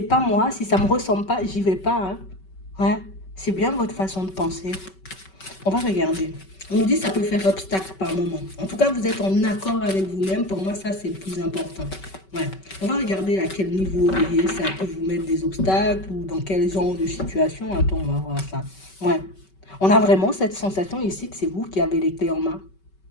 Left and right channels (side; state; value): right; late; 5.3 ms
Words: pas moi, si ça me ressemble pas, j'y vais pas. Hein. Ouais, c'est bien votre façon de penser. On va regarder. On nous dit que ça peut faire obstacle par moment. En tout cas, vous êtes en accord avec vous-même. Pour moi, ça, c'est le plus important. Ouais. On va regarder à quel niveau, vous voyez, ça peut vous mettre des obstacles ou dans quel genre de situation. Attends, on va voir ça. Ouais. On a vraiment cette sensation ici que c'est vous qui avez les clés en main.